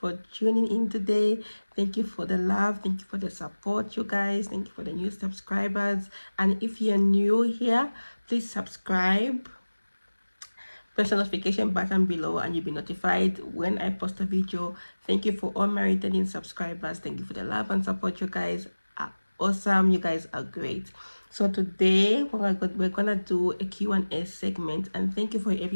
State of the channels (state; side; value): inverted; both; correlation -1.00